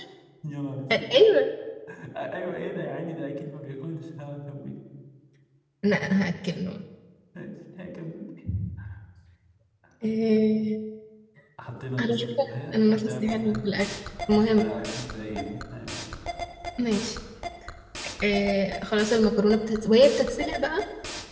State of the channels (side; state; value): both; identical; correlation 1.00